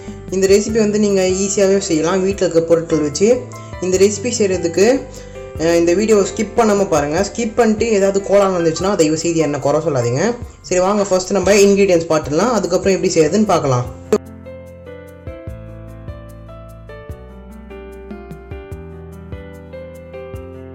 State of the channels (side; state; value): both; identical; correlation 1.00